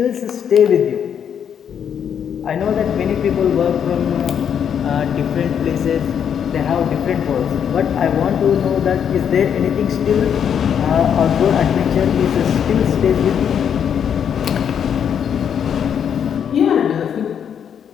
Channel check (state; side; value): quieter; right; 8.3 dB